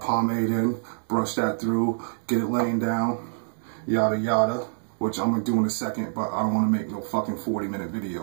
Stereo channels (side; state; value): left; silent; digital silence